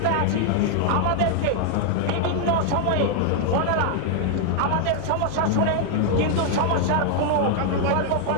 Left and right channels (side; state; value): both; different; correlation 0.00